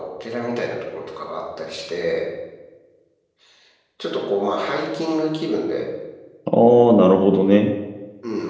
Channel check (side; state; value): both; identical; correlation 1.00